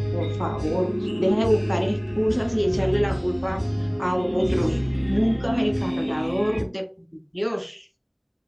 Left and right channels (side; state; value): both; identical; correlation 1.00